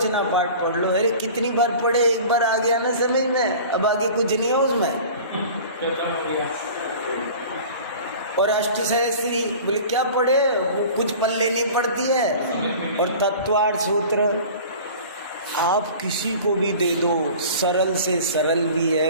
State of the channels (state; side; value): inverted; both; correlation -0.41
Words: पाठ पढ़ लो, अरे कितनी बार पढ़े, एक बार आ गया ना समझ में, अब आगे कुछ नहीं है उसमें। और अष्ट सहस्री बोले क्या पढ़े, वो कुछ पल्ले नहीं पड़ती है। और तत्वार्थ सूत्र आप किसी को भी दे दो, सरल से सरल भी है